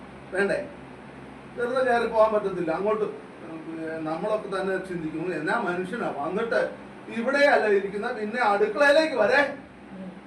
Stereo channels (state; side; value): identical; both; correlation 1.00